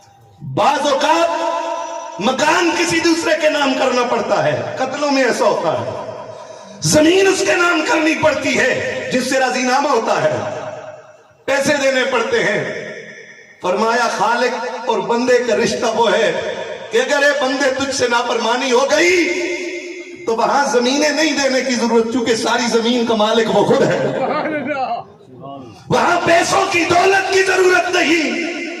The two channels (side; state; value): both; identical; correlation 1.00